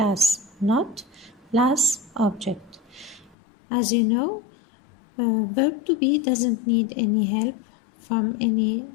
not plus object. As you know, verb to be doesn't need any help from any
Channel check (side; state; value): right; drops out; at 3.4 s